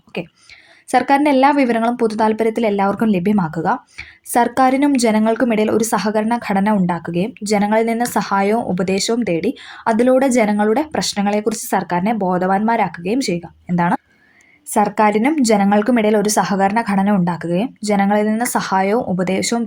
ഓക്കെ, സർക്കാരിൻ്റെ എല്ലാ വിവരങ്ങളും പൊതു താല്പര്യത്തിൽ എല്ലാവർക്കും ലഭ്യമാക്കുക, സർക്കാരിനും ജനങ്ങൾക്കുമിടയിൽ ഒരു സഹകരണ ഘടന ഉണ്ടാക്കുകയും ജനങ്ങളിൽ നിന്ന് സഹായവും ഉപദേശവും തേടി അതിലൂടെ ജനങ്ങളുടെ പ്രശ്നങ്ങളെക്കുറിച്ച് സർക്കാരിനെ ബോധവാന്മാരാക്കുകയും ചെയ്യുക. എന്താണ്? സർക്കാരിനും ജനങ്ങൾക്കുമിടയിൽ ഒരു സഹകരണ ഘടന ഉണ്ടാക്കുകയും ജനങ്ങളിൽ നിന്ന് സഹായവും ഉപദേശവും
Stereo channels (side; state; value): both; identical; correlation 1.00